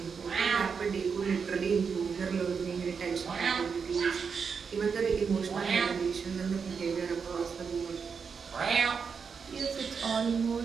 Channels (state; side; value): quieter; left; 5.9 dB